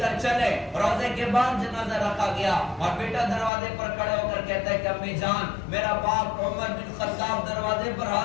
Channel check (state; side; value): drops out; right; at 3.5 s